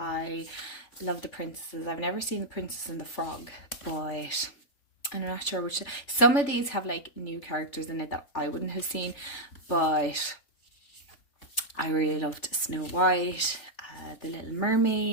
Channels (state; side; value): late; right; 3.4 ms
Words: love the princesses. I've never seen The Princess and the Frog, but I'm not sure which. Some of these have like new characters in it that I wouldn't have seen, but I really loved Snow White, The Little